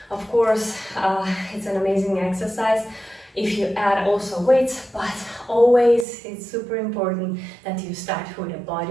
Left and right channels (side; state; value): left; drops out; at 6.1 s